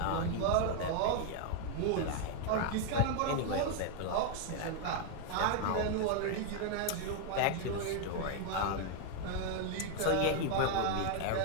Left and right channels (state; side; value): different; both; correlation 0.00